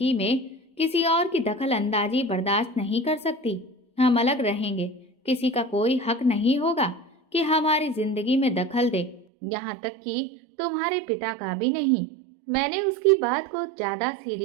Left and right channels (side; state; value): left; drops out; at 9.2 s